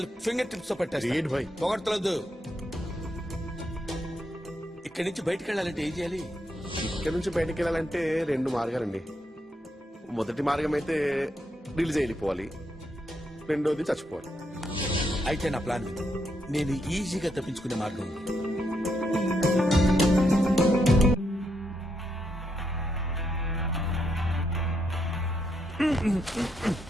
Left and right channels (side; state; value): both; normal; correlation 0.79